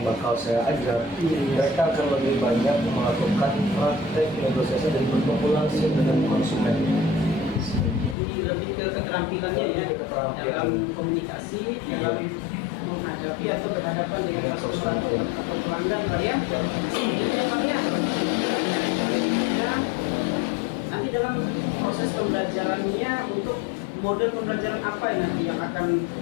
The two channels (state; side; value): drops out; right; at 8.2 s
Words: bakal saya ajar, mereka akan lebih banyak melakukan praktek negosiasi dan bertemu langsung dengan konsumen. Jadi lebih ke keterampilannya ya, dalam komunikasi, dalam menghadapi atau berhadapan dengan customer atau pelanggan Pak ya. Selanjutnya Pak ya, nanti dalam proses pembelajarannya untuk model pembelajaran apa nanti yang akan